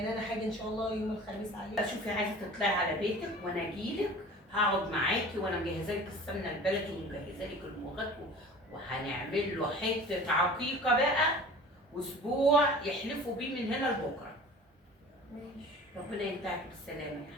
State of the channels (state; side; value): normal; both; correlation 0.42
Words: انا حاجه ان شاء الله يوم الخميس عليك. شوفي عايزه تطلعي على بيتك وانا اجيلك، هقعد معاكي وانا مجهزه لك السمنه البلدي ومجهزه لك المغات، وهنعمل له حته عقيقه بقى، واسبوع يحلفوا بيه من هنا لبكره. ماشي. ربنا ينتهك بالسلامه يا